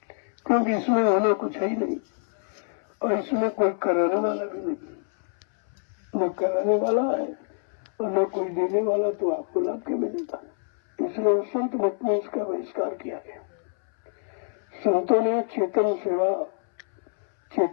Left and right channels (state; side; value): silent; right; 61 dB below the other